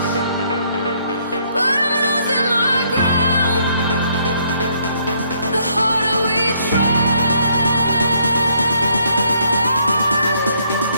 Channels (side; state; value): both; inverted; correlation -0.69